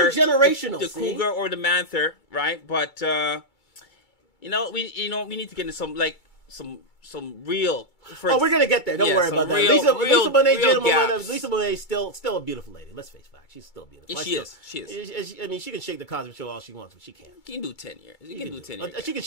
intergenerational, the cougar or the manther, right? But we need to get into some real. We're gonna get there. Don't worry about that. Lisa Bonet, Lisa Bonet is still a beautiful lady. Let's face facts. She's still beautiful. She is. I mean, she can shake the Cosby Show all she wants, but she can't. She can do 10 years. She can do 10 years. She can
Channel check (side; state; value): right; late; 2.3 ms